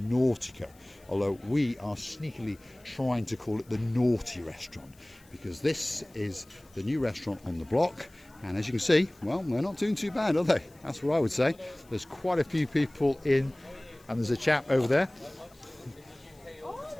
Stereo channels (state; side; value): noise; left; hiss, 29 dB below the sound